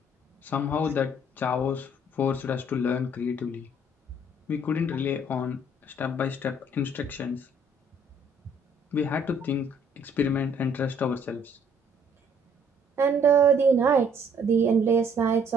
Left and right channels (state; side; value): normal; both; correlation 0.62